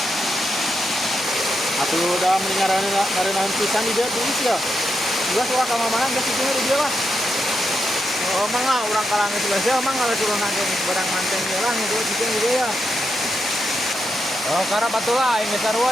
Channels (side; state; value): both; normal; correlation 0.84